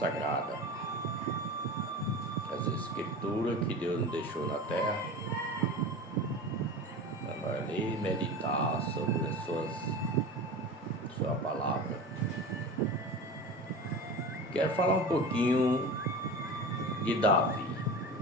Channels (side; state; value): both; normal; correlation 0.31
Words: as escrituras que Deus nos deixou na terra, para ler e meditar sobre as sua palavra. Quero falar um pouquinho de Davi,